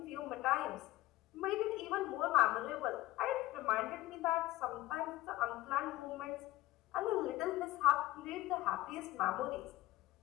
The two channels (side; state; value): right; quieter; 17.1 dB